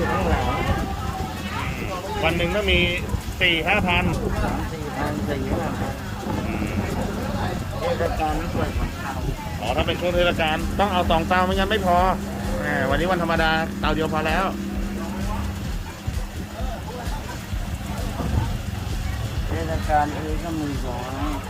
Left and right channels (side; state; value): both; identical; correlation 1.00